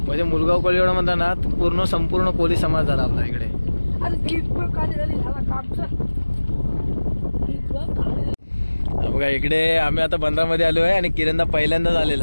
मुलगाव कोळीवाडा म्हणता ना पूर्ण संपूर्ण कोळी समाज झाला आपला इकडे. बघा इकडे आम्ही आता बंदरामध्ये आलो आहे आणि किरणदा पहिल्यांदाच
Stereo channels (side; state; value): both; inverted; correlation -1.00